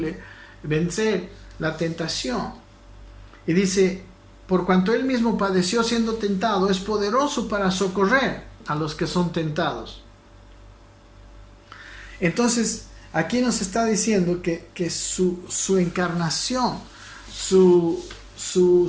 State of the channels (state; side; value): identical; both; correlation 1.00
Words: vencer la tentación. Y dice, por cuanto él mismo padeció siendo tentado, es poderoso para socorrer a los que son tentados. Entonces, aquí nos está diciendo que su encarnación, su